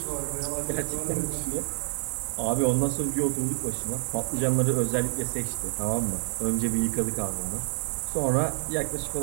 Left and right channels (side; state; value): left; silent; 59 dB below the other